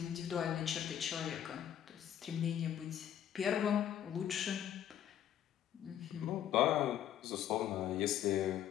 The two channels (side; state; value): right; quieter; 10.5 dB